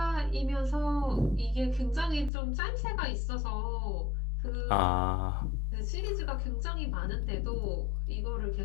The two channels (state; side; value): drops out; right; at 2.3 s